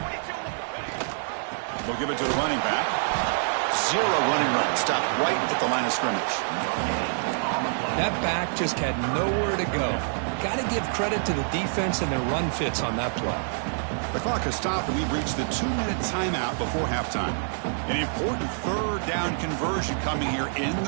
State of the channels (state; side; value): silent; left; digital silence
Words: We'll give it to the running back. 0 running run. Stopped right at the line of scrimmage. That back just had nowhere to go. Got to give credit to the defense and their run fits on that play. The clock has stopped, and we've reached the 2-minute timeout before halftime. An important 3rd down conversion coming here in